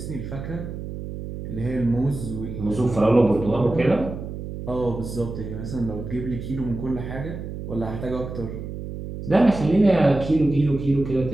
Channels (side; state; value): right; noise; hum, 8 dB below the sound